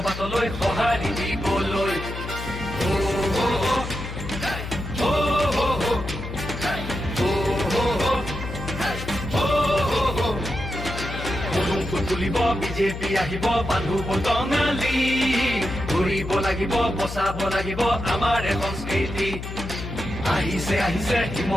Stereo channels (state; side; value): noise; left; hum, 8 dB below the sound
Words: বাটলৈ সঁহাৰি দিবলৈ তুলিব বিজেপি আহিব বান্ধু টঙালি ঘূৰিব লাগিব বচাব লাগিব আমাৰ সংস্কৃতি আহিছে